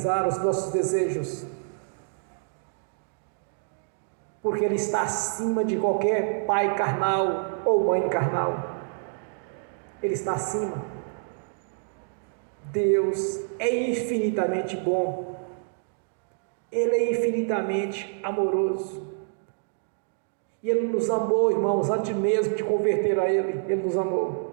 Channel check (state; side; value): silent; left; digital silence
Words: os nossos desejos, porque Ele está acima de qualquer pai carnal ou mãe carnal. Ele está acima. Deus é infinitamente bom. Ele é infinitamente amoroso. E Ele nos amou, irmãos, antes mesmo de converter a Ele. Ele nos